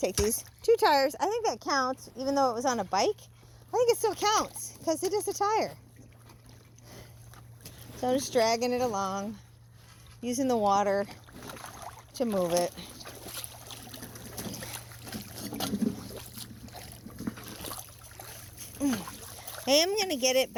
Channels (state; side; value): identical; both; correlation 1.00